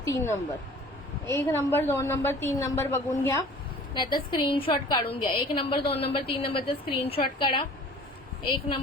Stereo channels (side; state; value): both; normal; correlation 0.46